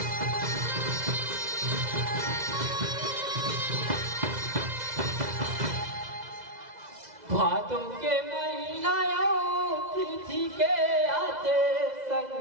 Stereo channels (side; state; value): left; late; 2.0 ms